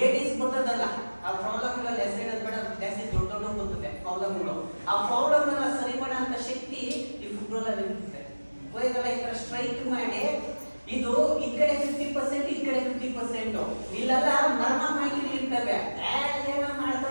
ಬರ್ತದಲ್ಲ, ಆ ಪ್ರಾಬ್ಲಮ್ಗಳಲ್ಲಿ ಹೆಸರು ಬೇಡ, ಜಾಸ್ತಿ ದೊಡ್ಡ ದೊಡ್ಡ ಬರ್ತದೆ ಪ್ರಾಬ್ಲಮ್ಗಳು. ಆ ಪ್ರಾಬ್ಲಮ್ ಎಲ್ಲ ಸರಿ ಮಾಡೋಂಥ ಶಕ್ತಿ ಈ ಫುಟ್ಬಾಲ್ ಇರುತ್ತೆ. ಹೋಯ್ತಲ್ಲ, ಈ ತರ ಸ್ಟ್ರೈಟ್ ಮಾಡಿ, ಇದು ಈ ಕಡೆ 50%, ಈ ಕಡೆ 50%. ಇಲ್ಲೆಲ್ಲ ಮರ್ಮ ಮಾಹಿತಿ ಇರ್ತವೆ, ಏನೋ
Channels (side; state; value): both; inverted; correlation -1.00